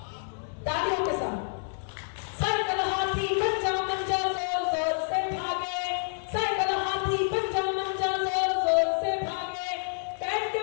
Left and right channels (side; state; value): right; silent; digital silence